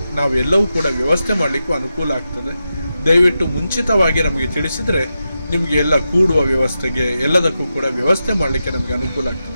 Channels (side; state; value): both; inverted; correlation -0.89